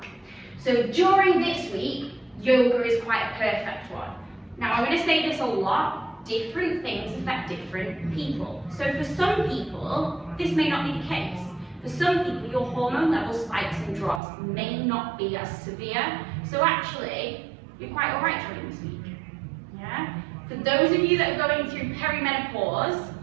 So during this week, yoga is quite a perfect one. Now, I'm going to say this a lot. Different things affect different people. So for some people, this may not be the case. For some people, your hormone level spikes and drops may not be as severe. So actually, you're quite all right during this week. Yeah? For those of you that are going through perimenopause,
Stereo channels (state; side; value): drops out; left; at 14.2 s